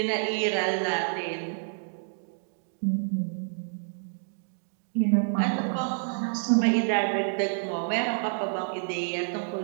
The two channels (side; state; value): left; silent; digital silence